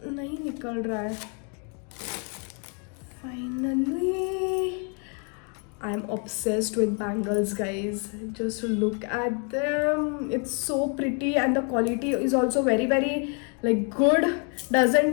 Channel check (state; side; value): quieter; right; 38.7 dB